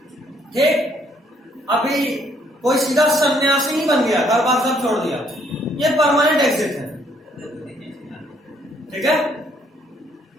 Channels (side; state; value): both; normal; correlation 0.67